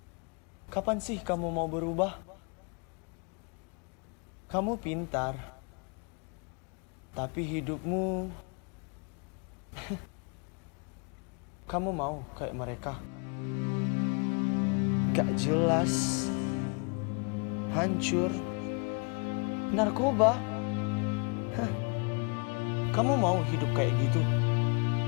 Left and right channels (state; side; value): quieter; right; 35.6 dB